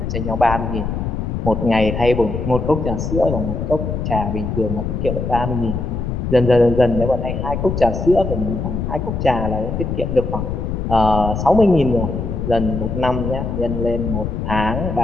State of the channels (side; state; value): left; noise; rumble, 3 dB below the sound